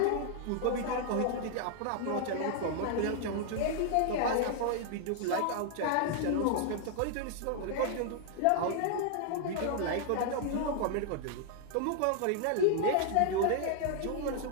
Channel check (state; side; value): different; both; correlation 0.00